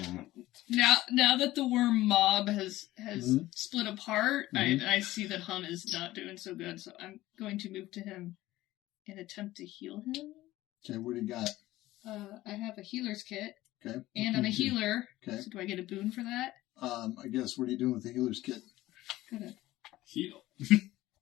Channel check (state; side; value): quieter; right; 16.5 dB